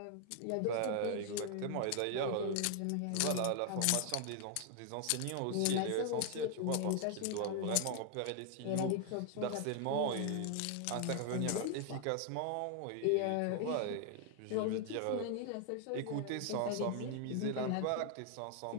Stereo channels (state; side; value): different; both; correlation 0.00